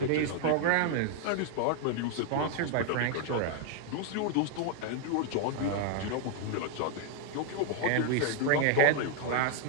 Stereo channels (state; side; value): different; both; correlation 0.00